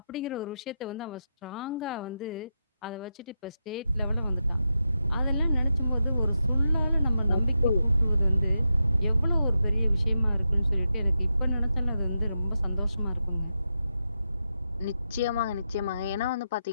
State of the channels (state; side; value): inverted; both; correlation -0.87